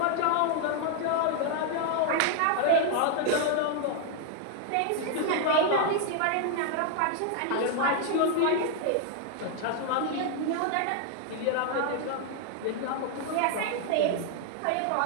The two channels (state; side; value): different; both; correlation 0.00